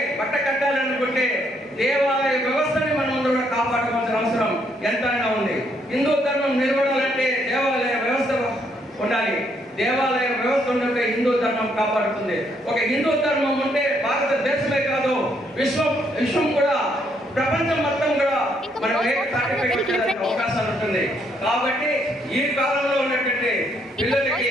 బట్ట కట్టాలనుకుంటే దేవాలయ వ్యవస్థని మనం ముందు కూడా కాపాడుకోవాల్సిన అవసరం ఎంతైనా ఉంది. హిందూ ధర్మం నిలబడాలంటే దేవాలయ వ్యవస్థ ఉండాలి. దేవాలయ వ్యవస్థ ఉంటే హిందూ ధర్మం కాపాడుతుంది. ఒక హిందూ ధర్మం ఉంటే భారతదేశమే కాదు విశ్వం కూడా, ప్రపంచం మొత్తం కూడా మనం అవకాశాలు ఉంటుంది. కాబట్టి ఈ కాలంలో ఉన్నటువంటి పిల్లలకి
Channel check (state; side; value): normal; both; correlation 0.72